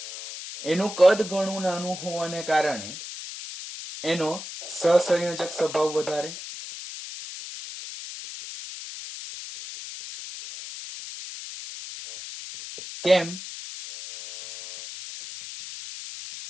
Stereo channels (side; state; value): left; noise; hiss, 11 dB below the sound